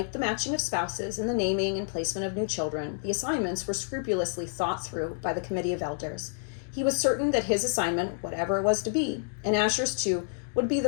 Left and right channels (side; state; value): right; silent; digital silence